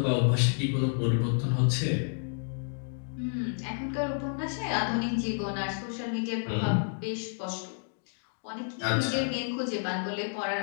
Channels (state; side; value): silent; right; digital silence